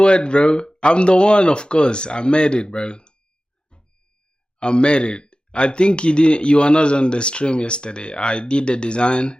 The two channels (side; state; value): both; normal; correlation 0.96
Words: bro? I'm the one, of course. I made it, bro. I made it. I think you were not on the stream yesterday. I did the